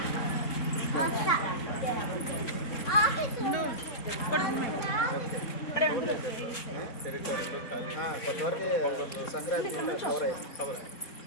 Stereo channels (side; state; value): right; late; 3.6 ms